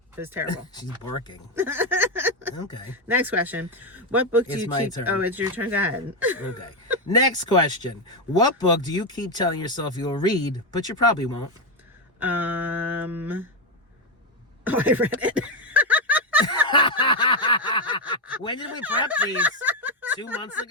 it was terrible. She's barking. Okay. Next question. What book do It's you my keep... turn. Oh, it's your turn. Go ahead. Okay. Next question. What book do you keep telling yourself you'll read, but you probably won't? Oh, I read it. When did we prep these? 2 months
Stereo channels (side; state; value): both; normal; correlation 0.07